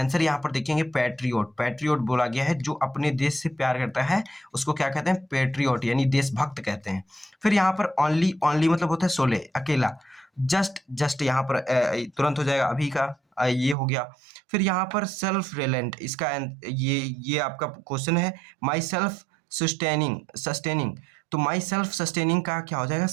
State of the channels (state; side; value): drops out; left; at 13.8 s